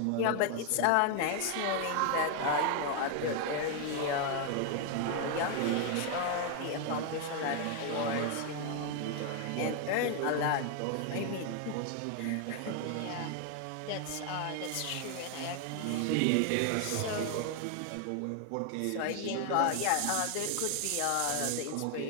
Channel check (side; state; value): both; different; correlation 0.00